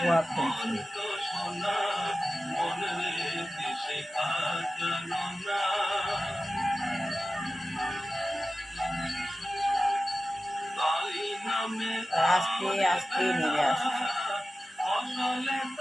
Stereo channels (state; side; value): normal; both; correlation 0.95